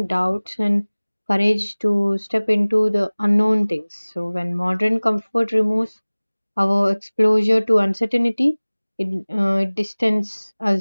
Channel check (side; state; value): both; inverted; correlation -1.00